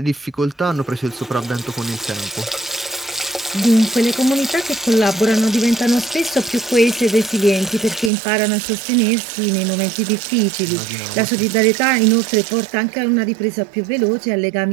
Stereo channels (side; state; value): left; drops out; at 8.1 s